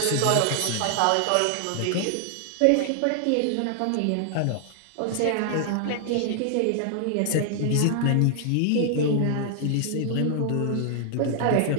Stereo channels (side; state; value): both; different; correlation 0.00